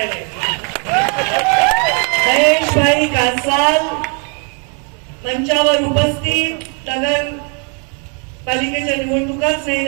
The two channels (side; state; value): left; quieter; 39.2 dB